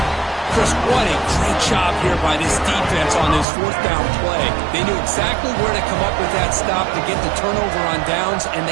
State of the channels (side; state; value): left; drops out; at 3.5 s